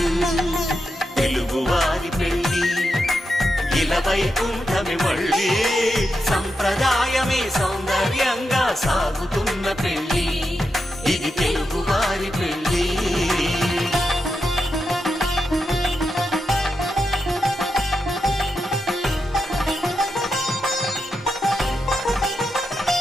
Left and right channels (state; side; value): normal; both; correlation 0.87